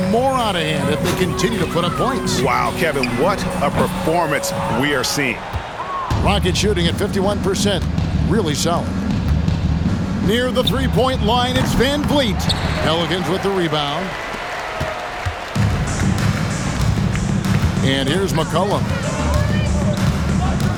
more out of hand if they continue to put up points. Wow, Kevin, what a performance we are seeing. Rockets shooting at 51%. Really solid. Near the three-point line, it's Van Vliet. Pelicans with the rebound. And here's McCollum.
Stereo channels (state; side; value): identical; both; correlation 1.00